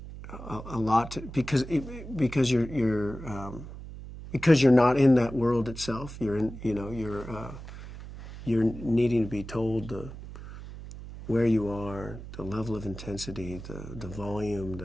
a lot because you're not in that world itself. You're needing to be told where you are, the level of intensity, the volume,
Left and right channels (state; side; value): noise; right; hum, 12 dB below the sound